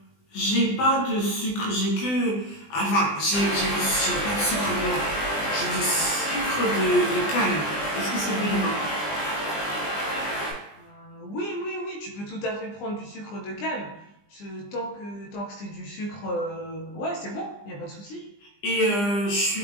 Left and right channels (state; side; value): late; right; 20 ms